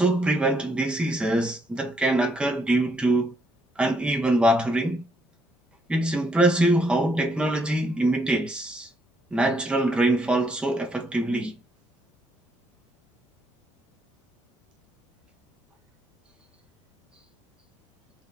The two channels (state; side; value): normal; both; correlation 0.73